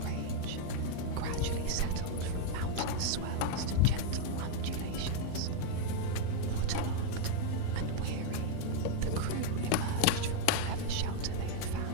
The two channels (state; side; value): different; both; correlation 0.01